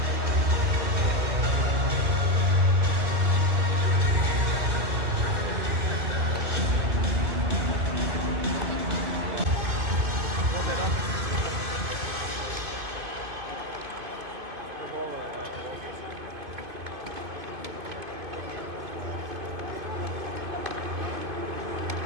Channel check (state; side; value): late; left; 2.5 ms